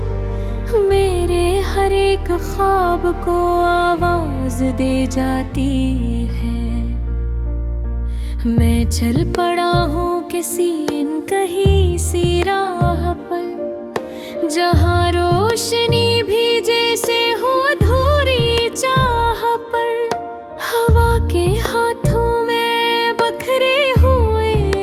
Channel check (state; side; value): identical; both; correlation 1.00